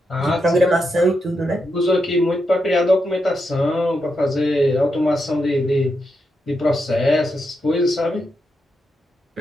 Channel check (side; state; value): both; normal; correlation 0.84